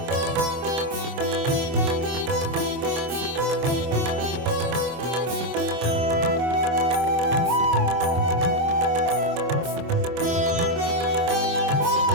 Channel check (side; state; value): left; late; 25 ms